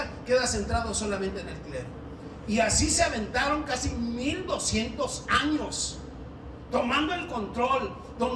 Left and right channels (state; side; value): identical; both; correlation 1.00